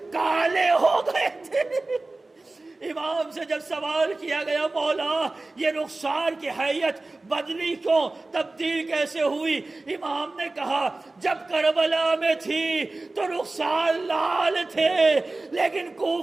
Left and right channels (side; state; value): left; quieter; 3.2 dB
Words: کالے ہو گئے تھے. امام سے جب سوال کیا گیا مولا یہ رخسار کی حیت بدلی کیوں تبدیل کیسے ہوئی؟ امام نے کہا جب کربلا میں تھی تو رخسار لال تھے لیکن